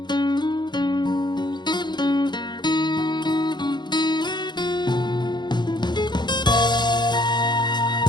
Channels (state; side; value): late; right; 0.21 ms